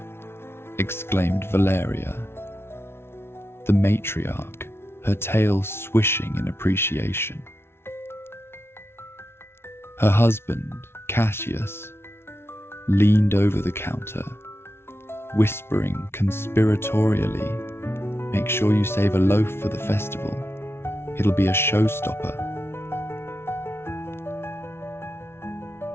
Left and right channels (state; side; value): late; right; 0.12 ms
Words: exclaimed Valeria, the matriarch, her tail swishing in appreciation. Her husband, Cassius, leaned over the counter, whispering conspiratorially, "Make sure you save a loaf for the festival. It'll be a showstopper."